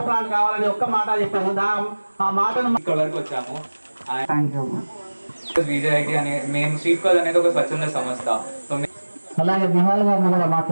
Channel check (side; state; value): both; inverted; correlation -1.00